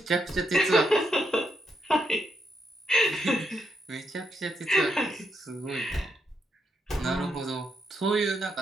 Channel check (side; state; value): both; normal; correlation 0.80